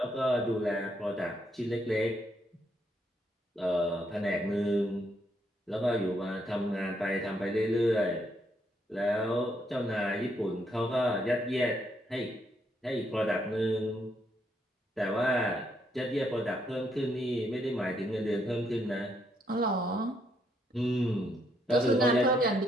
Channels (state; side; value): normal; both; correlation 0.74